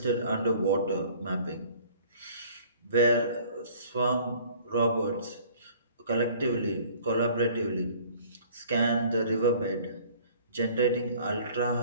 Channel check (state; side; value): inverted; both; correlation -0.52